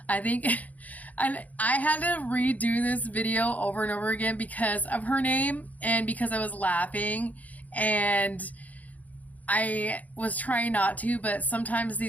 I think I had to redo this video over and over again because of her name and because I was laughing, and I was trying not to, but sometimes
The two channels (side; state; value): right; late; 0.076 ms